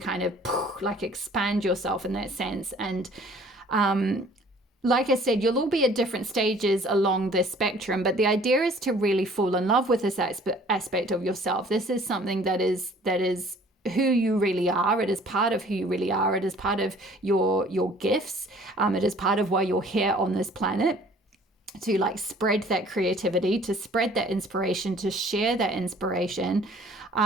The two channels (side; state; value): both; normal; correlation 0.53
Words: of like expand yourself in that sense. And like I said, you'll all be at different stages along this spectrum, but the idea is to really fall in love with this aspect of yourself. This is something that is who you really are. It is part of who you really are. It is part of your gifts. It is part of why you're here on this planet, to like spread that creativity, to spread that inspiration, to share that inspiration.